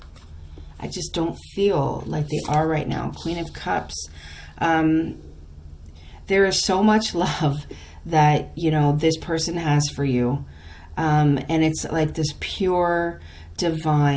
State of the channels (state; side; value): identical; both; correlation 1.00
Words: I just don't feel like they are right now. Queen of Cups. There is so much love that, this person has for you. And it's like this pure,